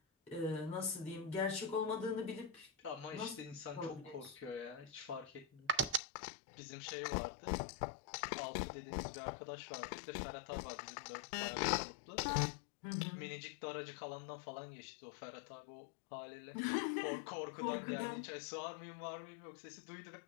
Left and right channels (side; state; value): right; drops out; at 6.0 s